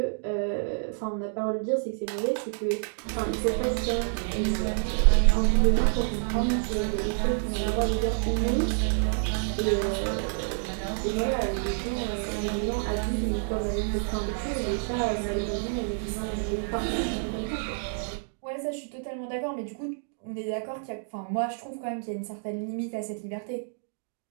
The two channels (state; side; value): silent; left; digital silence